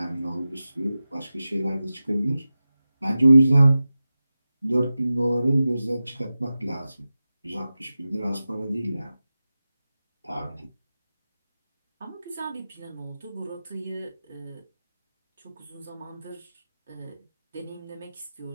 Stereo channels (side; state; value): both; inverted; correlation -0.94